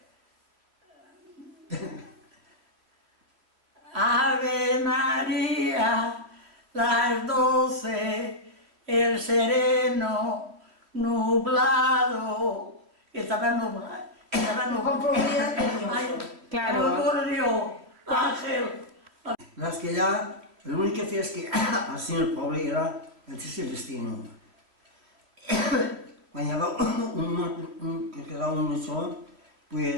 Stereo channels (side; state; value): left; late; 3.0 ms